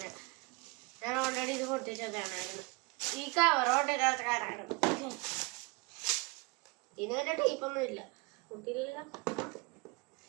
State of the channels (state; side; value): quieter; left; 26.9 dB